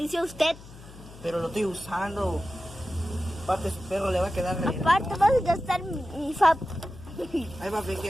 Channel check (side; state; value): left; noise; hum, 18 dB below the sound